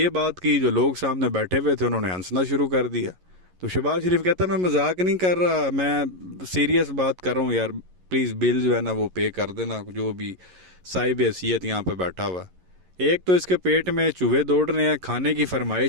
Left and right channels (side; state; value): left; late; 11 ms